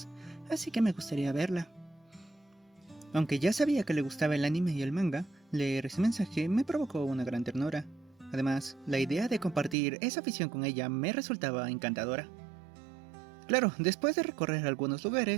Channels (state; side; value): drops out; left; at 9.8 s